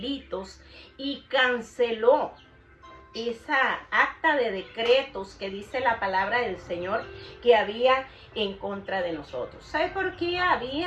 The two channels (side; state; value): both; identical; correlation 1.00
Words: y canceló esa acta de decretos que dice la palabra del Señor que había en contra de nosotros. ¿Sabe por qué